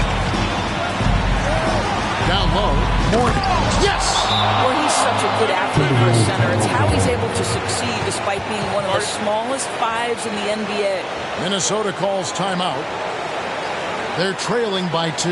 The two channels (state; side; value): identical; both; correlation 1.00